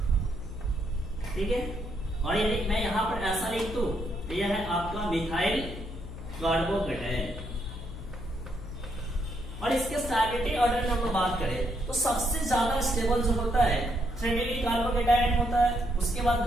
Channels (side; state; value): left; noise; hum, 11 dB below the sound